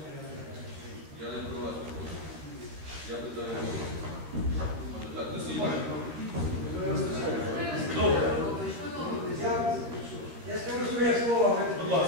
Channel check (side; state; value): left; late; 13 ms